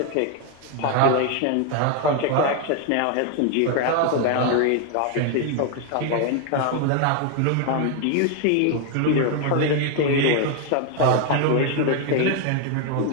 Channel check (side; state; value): both; different; correlation 0.01